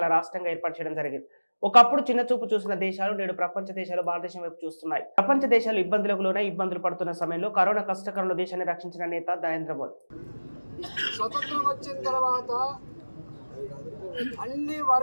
రాష్ట్రంగా ఏర్పాటు చేయడం జరిగింది. ఒకప్పుడు చిన్న చూపు చూసిన దేశాలు నేడు ప్రపంచ దేశాలు భారతదేశం వైపు చూస్తున్నాయి. ప్రపంచ దేశాలు ఇబ్బందులకు లోనే ఇబ్బందులు పడుతున్న సమయంలో కరోనా కష్టకాలంలో దేశాన్ని రక్షించిన నేత నరేంద్ర మోదీ. స్వతంత్రం వచ్చిన తర్వాత అన్ని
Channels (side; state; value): both; inverted; correlation -1.00